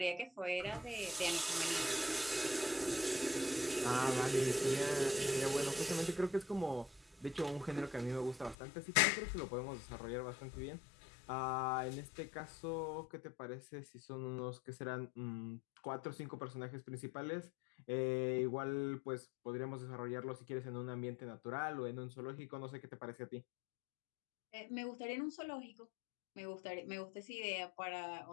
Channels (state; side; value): drops out; right; at 8.6 s